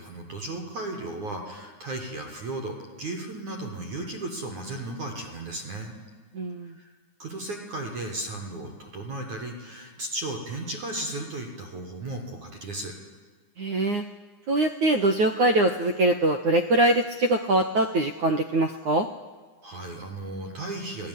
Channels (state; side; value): late; left; 9.7 ms